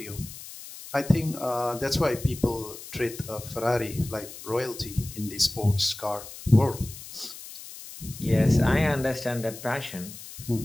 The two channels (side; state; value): left; noise; hiss, 14 dB below the sound